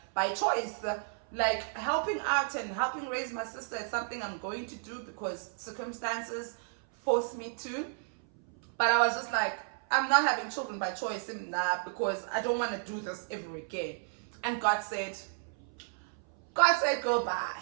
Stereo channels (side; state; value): left; silent; 56 dB below the other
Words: by choice. Like, helping out and helping raise my sister is something I'm going to do because circumstances force me to. But I was just like, I'm not having children by choice, because I don't want to do this ever again. And God said, girl, bye.